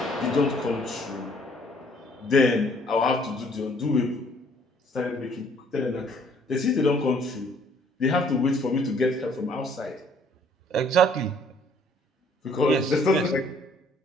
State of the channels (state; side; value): normal; both; correlation 0.61